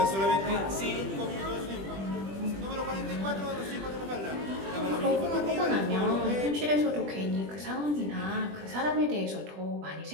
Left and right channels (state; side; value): late; left; 20 ms